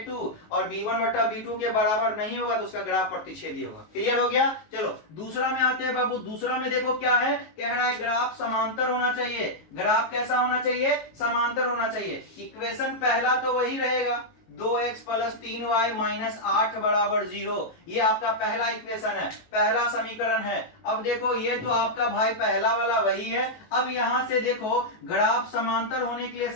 और b1 बटा b2 के बराबर नहीं होगा तो उसका ग्राफ प्रतिच्छेदी होगा। क्लियर हो गया? चलो दूसरा में आते हैं बाबू। दूसरा में देखो क्या है, कह रहा है ग्राफ समांतर होना चाहिए। ग्राफ कैसा होना चाहिए? समांतर होना चाहिए। इक्वेशन पहला तो वही रहेगा, 2x प्लस 3y माइनस 8 बराबर 0, ये आपका पहला इक्वेशन है, पहला समीकरण है। अब देखो ये तो आपका भाई पहला वाला वही है। अब यहां से देखो ग्राफ समांतर होने के लिए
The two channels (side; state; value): right; late; 19 ms